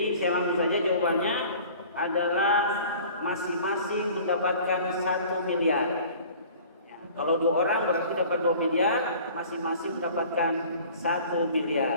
saya langsung saja jawabannya adalah masing-masing mendapatkan 1 miliar. Ya, kalau 2 orang berarti dapat 2 miliar, masing-masing mendapatkan 1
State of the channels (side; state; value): both; inverted; correlation -0.46